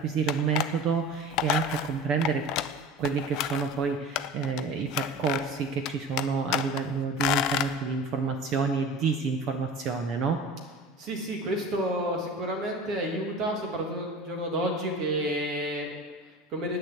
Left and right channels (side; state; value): both; normal; correlation 0.36